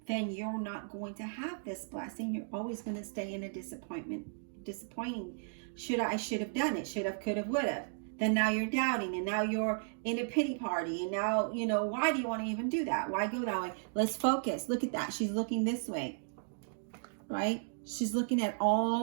then you're not going to have this blessing. You're always going to stay in a disappointing. Should have done it, should have, could have, would have. Then now you're doubting, and now you're in a pity party, and now, why do you want to even do that? Why go that way? Let's focus. Look at that. She's looking this way, right? She's looking at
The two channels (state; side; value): silent; left; digital silence